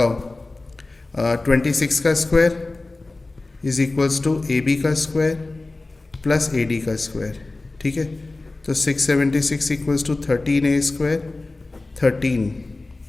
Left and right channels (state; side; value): quieter; right; 3.2 dB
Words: 26 का square is equals to AB का स्क्वायर प्लस AD का स्क्वायर, ठीक है। तो 676 इक्वल्स टू 13a स्क्वायर,